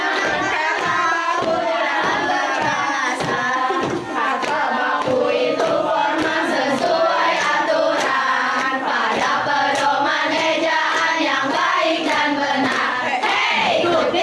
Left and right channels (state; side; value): identical; both; correlation 1.00